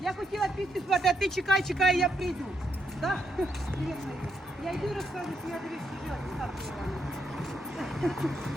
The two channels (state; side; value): normal; both; correlation 0.78